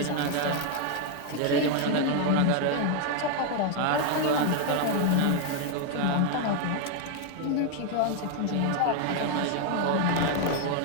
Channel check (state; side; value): different; both; correlation 0.01